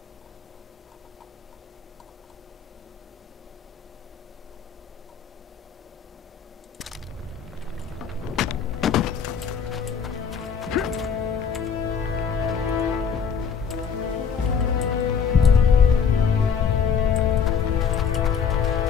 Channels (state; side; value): quieter; right; 6.8 dB